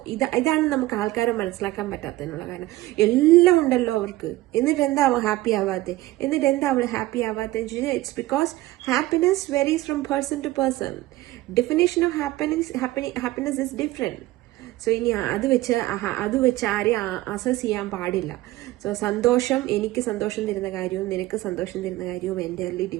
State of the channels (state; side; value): quieter; left; 17.4 dB